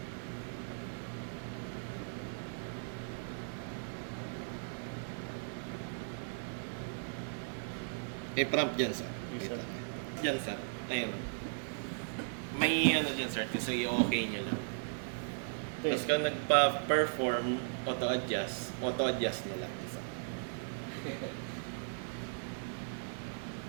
Prompt dyan, sir. Yes, sir. Dyan, sir. Ayun. May ano dyan, sir. Kasi okay nyo lang. Tapos kung nagpa-perform, auto-adjust na lang. Sir.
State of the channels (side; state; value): left; silent; digital silence